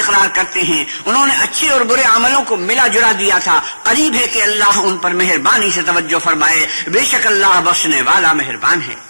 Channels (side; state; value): both; inverted; correlation -1.00